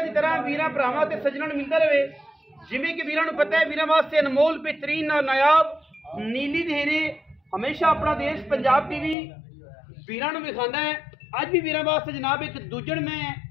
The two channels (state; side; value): drops out; right; at 9.2 s